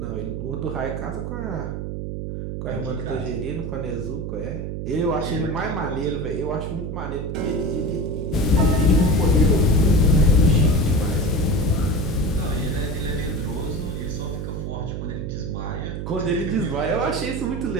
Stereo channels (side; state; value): right; noise; hum, 5 dB below the sound